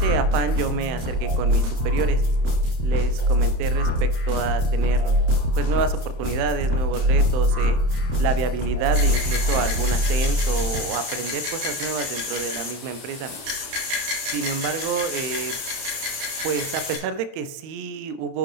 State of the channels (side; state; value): left; late; 30 ms